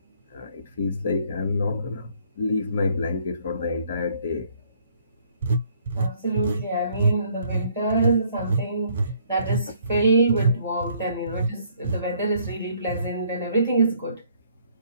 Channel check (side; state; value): both; inverted; correlation -0.64